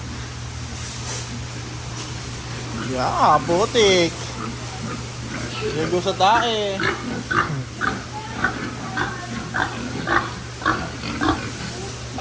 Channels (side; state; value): both; identical; correlation 1.00